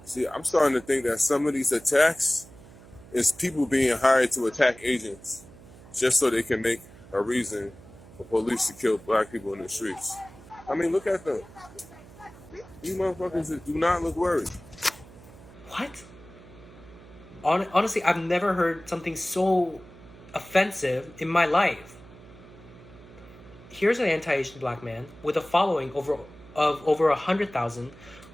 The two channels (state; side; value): noise; right; hum, 20 dB below the sound